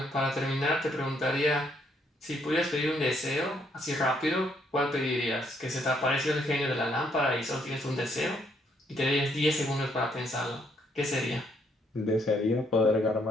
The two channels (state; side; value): normal; both; correlation 0.71